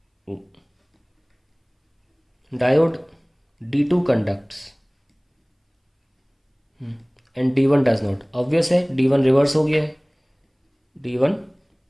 diode D2 conducts and D1 does not. Obvious है, D1 रिवर्स हो गया है, D1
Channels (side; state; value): both; identical; correlation 1.00